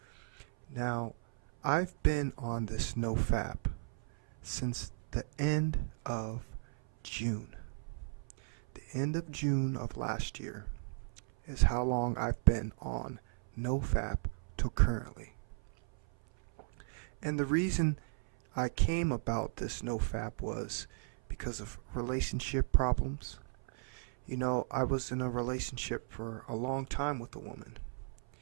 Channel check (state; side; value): silent; left; 54 dB below the other